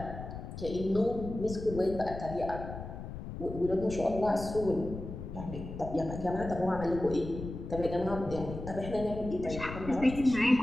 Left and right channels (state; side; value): noise; left; rumble, 9 dB below the sound